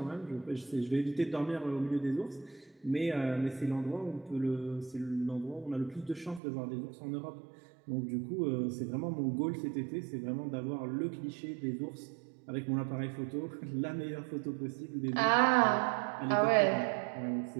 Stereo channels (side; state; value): left; drops out; at 6.4 s